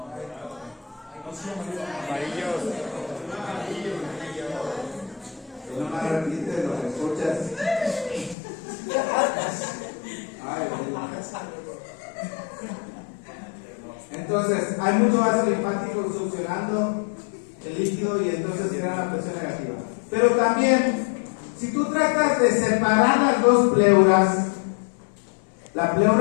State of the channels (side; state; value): right; drops out; at 8.3 s